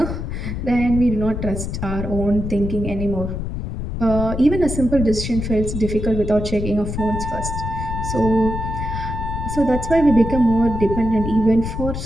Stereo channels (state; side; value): noise; left; rumble, 5 dB below the sound